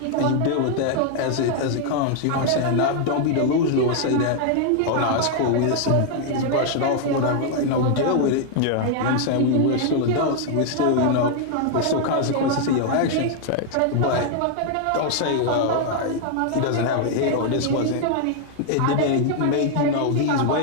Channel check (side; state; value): both; different; correlation 0.00